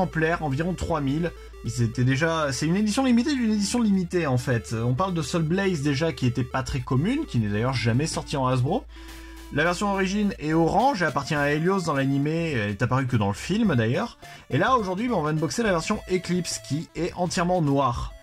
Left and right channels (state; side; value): identical; both; correlation 1.00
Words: environ 3000. C'est une édition limitée d'une édition limitée en fait. On parle de Soul Blaze déjà qui était pas très commune, qui n'est d'ailleurs jamais sortie en Hasbro. La version origine est orange et appartient à Helios dans l'animé, elle est apparue que dans le film d'ailleurs. Et là aujourd'hui on va unboxer la version Eclipse qui est entièrement noire.